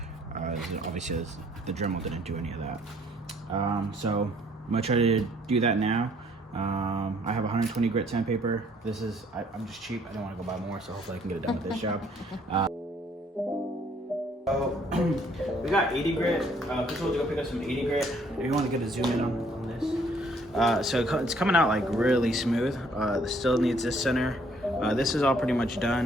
Obviously the Dremel didn't do any of that. So I'm gonna try to do that now. I have 120 grit sandpaper. This is, I'm just cheap. I don't want to go buy more, so hopefully I can get it done with this job. So we got 80 grit. Chris will go pick up some 80 grit. If you want to get a zoom in on this. So it's coming out like really smooth. This still needs this center. This is all pretty much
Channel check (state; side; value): normal; both; correlation 0.63